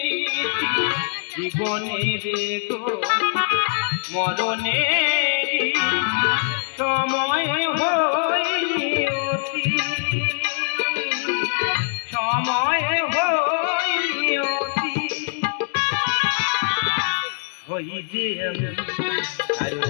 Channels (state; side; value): silent; right; 64 dB below the other